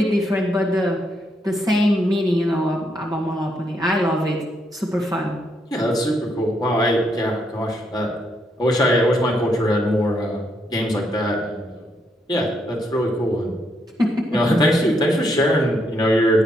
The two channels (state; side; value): normal; both; correlation 0.76